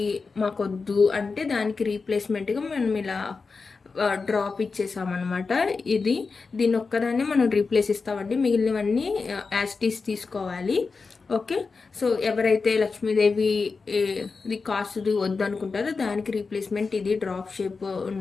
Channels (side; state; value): right; quieter; 4.5 dB